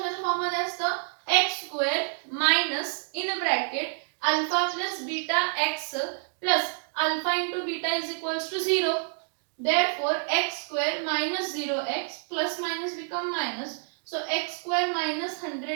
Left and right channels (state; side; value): silent; left; 59 dB below the other